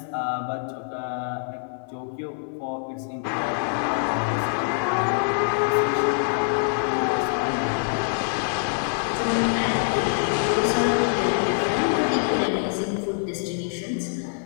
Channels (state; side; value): silent; right; digital silence